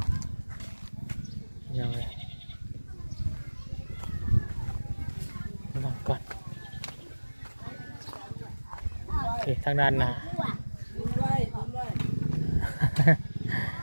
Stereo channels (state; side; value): inverted; both; correlation -1.00